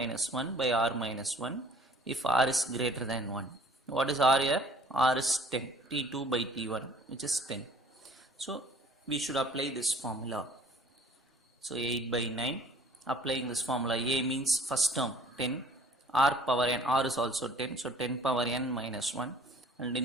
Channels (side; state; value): both; normal; correlation 0.53